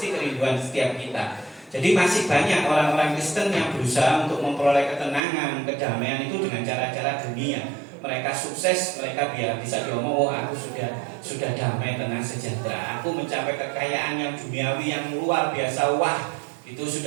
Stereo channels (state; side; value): drops out; left; at 5.2 s